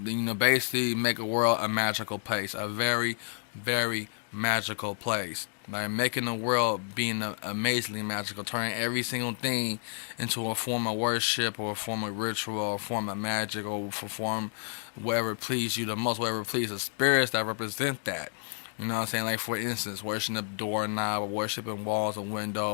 make a world a magical place, a very, very magical place. Like making the world being amazingly magical, turning every single thing into a form of worship or a form of ritual or a form of magic or for form whatever please you the most, whatever please the spirits that represent that. You know what I'm saying? Like, for instance, worshiping a doorknob, or worshiping walls and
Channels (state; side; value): silent; right; 56 dB below the other